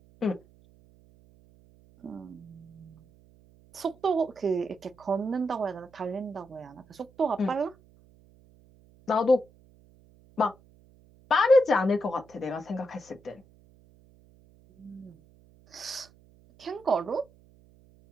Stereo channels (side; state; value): right; noise; hum, 27 dB below the sound